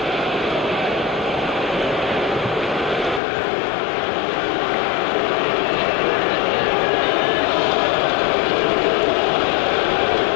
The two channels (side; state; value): right; drops out; at 3.2 s